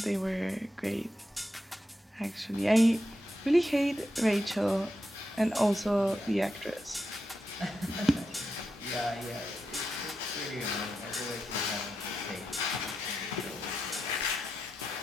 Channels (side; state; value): both; normal; correlation 0.87